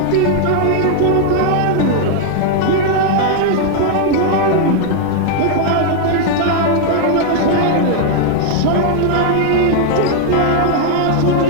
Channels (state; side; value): different; both; correlation 0.00